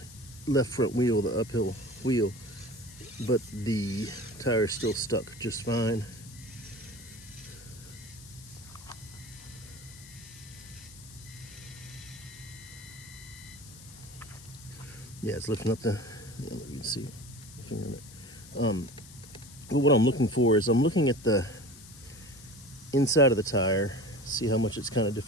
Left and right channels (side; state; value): left; noise; hiss, 18 dB below the sound